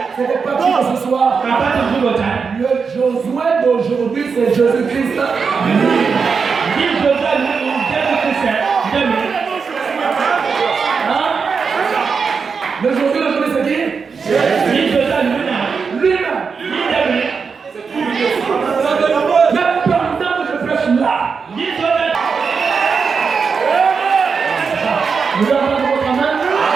Ce n'est pas qui que ce soit. Le Josué d'aujourd'hui, c'est Jésus-Christ. Le Josué d'aujourd'hui, c'est qui? Lui-même.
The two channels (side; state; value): left; quieter; 5.5 dB